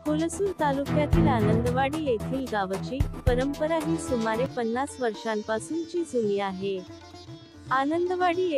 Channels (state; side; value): identical; both; correlation 1.00